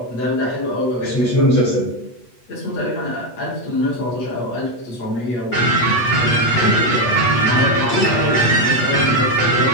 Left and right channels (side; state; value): right; late; 8.3 ms